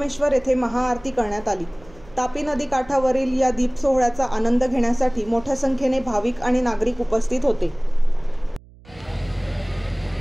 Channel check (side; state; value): right; noise; hum, 24 dB below the sound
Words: येथे महाआरती करण्यात आली। तापी नदी काठावरील या दीप सोहळ्याचा आनंद घेण्यासाठी मोठ्या संख्येने भाविक आणि नागरिक उपस्थित होते।